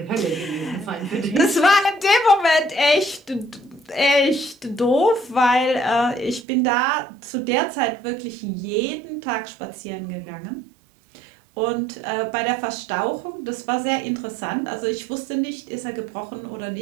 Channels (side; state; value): left; drops out; at 6.5 s